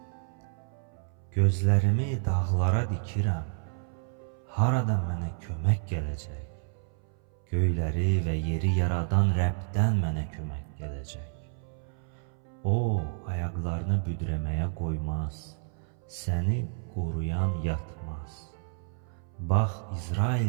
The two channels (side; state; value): left; silent; 57 dB below the other